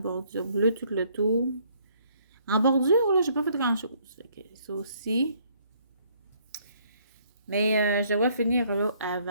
bleue tout le tour. En bordure, là, j'ai pas fait grand chose. Fait que ça aussi. Mais je devrais finir là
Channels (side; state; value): both; inverted; correlation -0.65